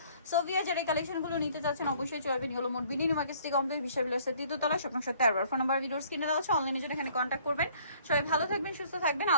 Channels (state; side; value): inverted; both; correlation -0.58